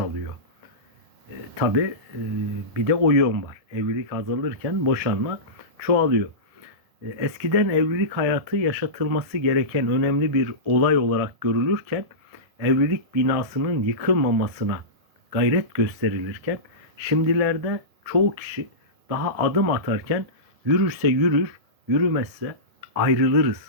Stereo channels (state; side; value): late; left; 1.7 ms